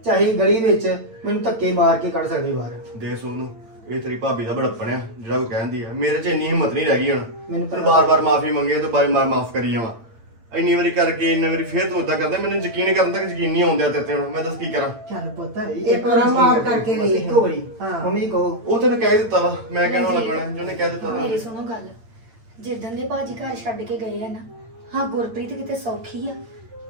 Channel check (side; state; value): left; late; 8.9 ms